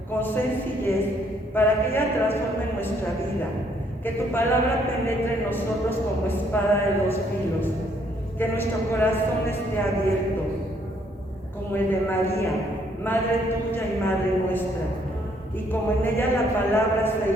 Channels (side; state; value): both; normal; correlation 0.68